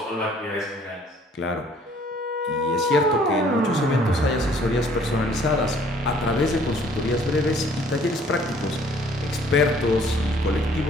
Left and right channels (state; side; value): normal; both; correlation 0.58